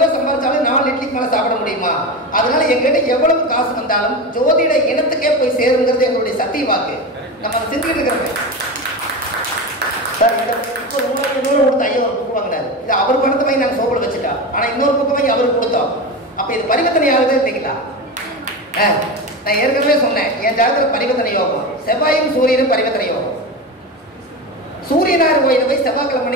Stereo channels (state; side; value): normal; both; correlation 0.22